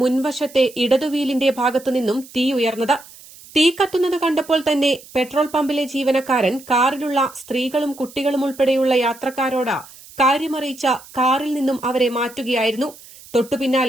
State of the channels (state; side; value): noise; right; hiss, 20 dB below the sound